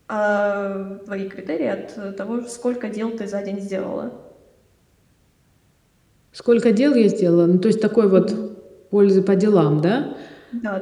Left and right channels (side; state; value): both; identical; correlation 1.00